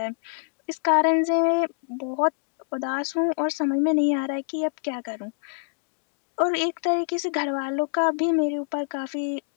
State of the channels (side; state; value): right; silent; digital silence